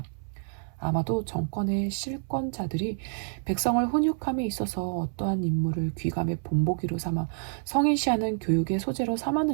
아마도 정권의 실권자들이 백성을 훈육함에 있어서 어떠한 임무를 귀감의 본보기로 삼아 성인시하는 교육의 소재로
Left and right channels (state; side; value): silent; left; 59 dB below the other